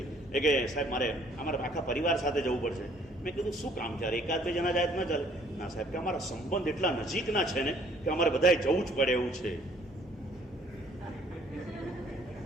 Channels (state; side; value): normal; both; correlation 0.60